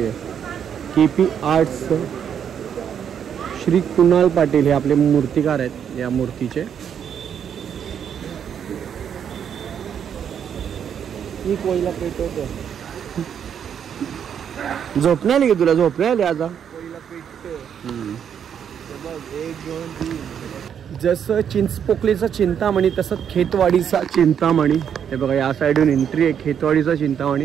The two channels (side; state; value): left; quieter; 8.3 dB